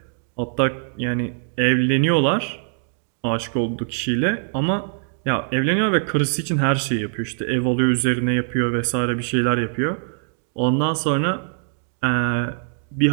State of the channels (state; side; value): silent; left; 64 dB below the other